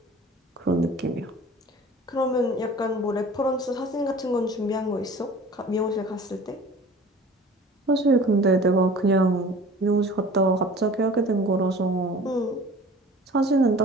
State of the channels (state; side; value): normal; both; correlation 0.44